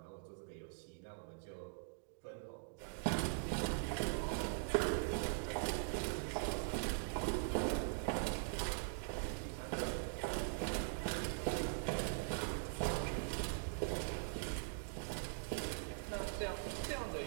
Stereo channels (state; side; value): silent; left; digital silence